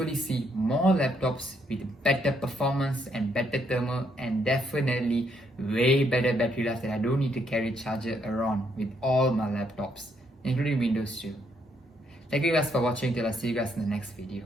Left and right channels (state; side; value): normal; both; correlation 0.73